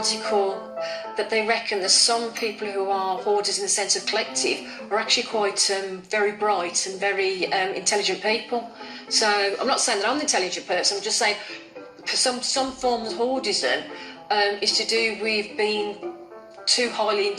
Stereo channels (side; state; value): both; identical; correlation 1.00